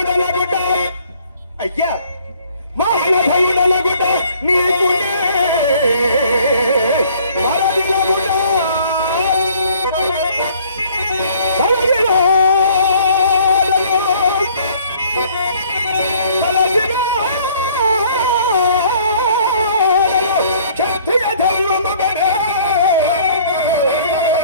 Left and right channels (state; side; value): inverted; both; correlation -0.57